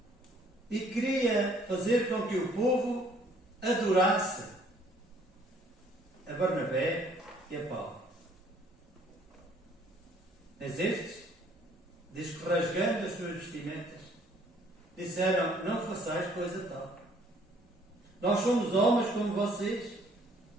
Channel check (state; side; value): normal; both; correlation 0.61